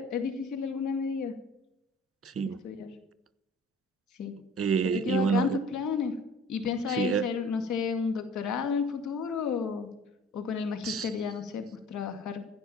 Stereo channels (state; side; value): normal; both; correlation 0.47